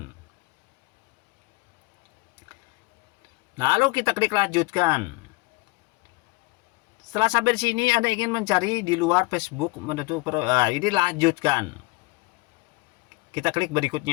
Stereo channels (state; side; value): quieter; right; 24.7 dB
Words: Lalu kita klik lanjutkan. Setelah sampai di sini, Anda ingin mencari di luar Facebook, ini lanjutkan. Kita klik